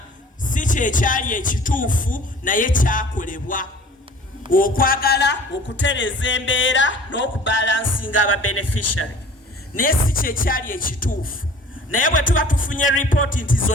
si kyekyali ekituufu naye kyakolebwa okwagala okutereza embeera n'okubalansinga aba beneficiary, naye si kyekyali ekituufu. Naye bwe tuba tufunye ripooti nti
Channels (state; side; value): normal; both; correlation 0.47